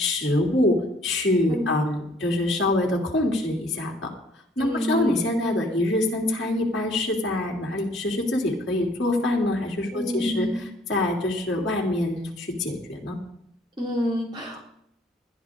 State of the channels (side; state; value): both; normal; correlation 0.60